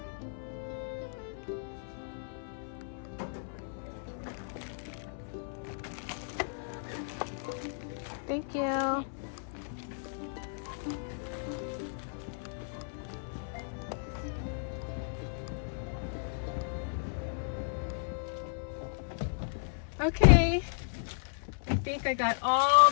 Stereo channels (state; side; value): silent; right; 55 dB below the other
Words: Thank you. Okay, I think I got all